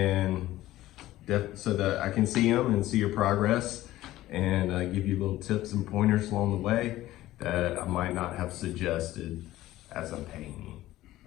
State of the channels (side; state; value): right; quieter; 15.6 dB